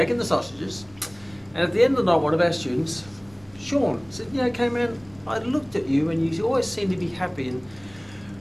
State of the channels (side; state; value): right; noise; rumble, 26 dB below the sound